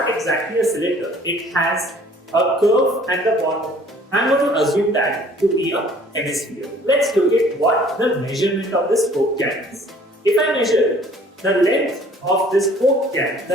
exactly a cylinder. It has a curve at the bottom. I'm going to assume that to be a hemisphere. Let's look at what the measurement of this Coke can is. If I measure the length of this Coke can,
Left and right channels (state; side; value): normal; both; correlation 0.55